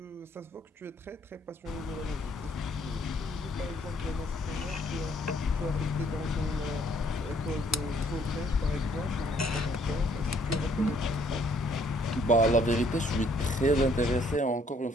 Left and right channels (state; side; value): normal; both; correlation 0.65